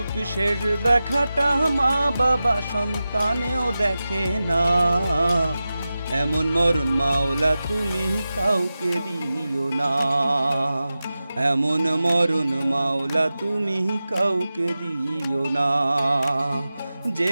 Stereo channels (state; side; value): inverted; both; correlation -0.94